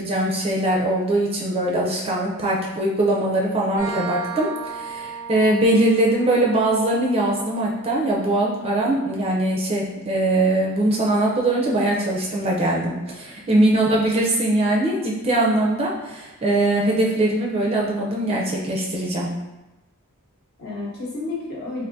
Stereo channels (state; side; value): normal; both; correlation 0.46